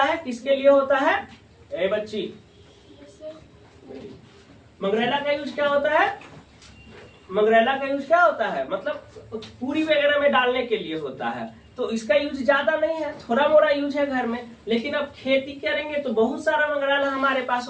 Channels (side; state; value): both; identical; correlation 1.00